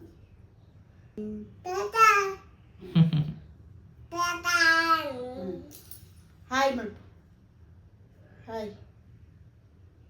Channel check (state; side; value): identical; both; correlation 1.00